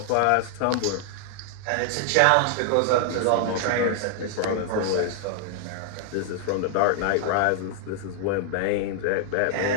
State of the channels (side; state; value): both; different; correlation -0.01